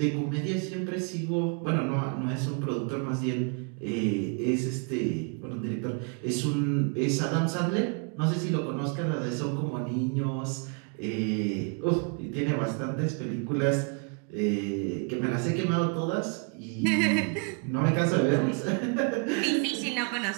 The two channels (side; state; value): left; quieter; 37.4 dB